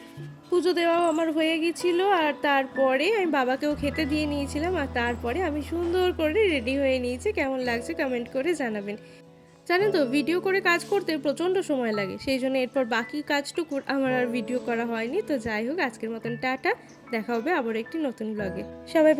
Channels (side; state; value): both; identical; correlation 1.00